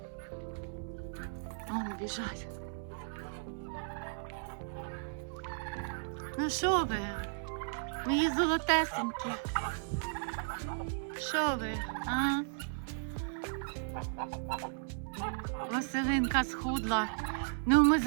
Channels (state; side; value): silent; left; digital silence